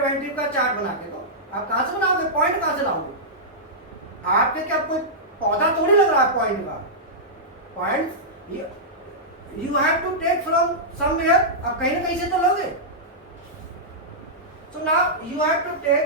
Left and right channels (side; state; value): both; normal; correlation -0.12